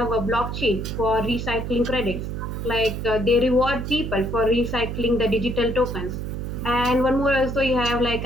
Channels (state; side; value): noise; right; hum, 5 dB below the sound